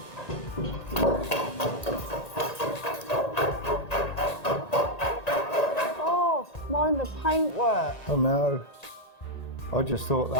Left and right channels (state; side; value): late; right; 1.8 ms